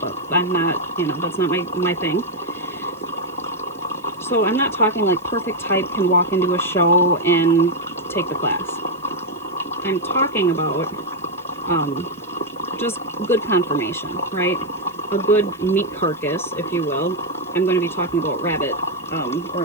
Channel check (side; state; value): right; noise; hiss, 28 dB below the sound